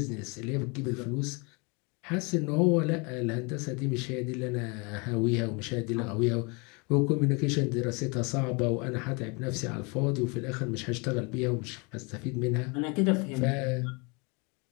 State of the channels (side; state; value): right; quieter; 30.6 dB